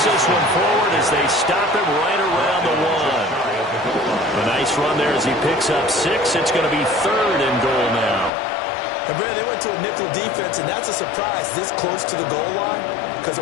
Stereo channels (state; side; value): drops out; right; at 8.3 s